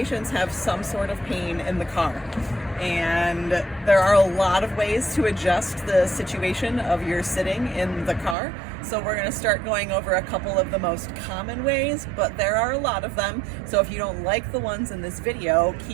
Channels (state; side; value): drops out; left; at 8.3 s